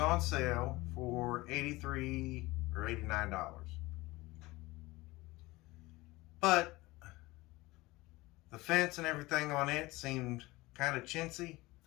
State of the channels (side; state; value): right; quieter; 20.7 dB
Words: sale for $83 or $89. But the fence and everything on it seemed kind of chintzy,